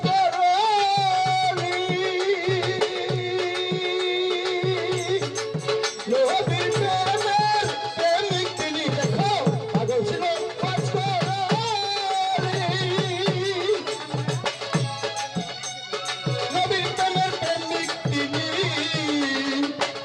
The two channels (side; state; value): both; identical; correlation 1.00